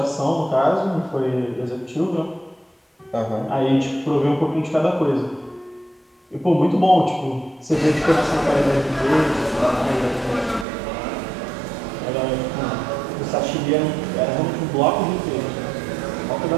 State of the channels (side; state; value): left; drops out; at 10.7 s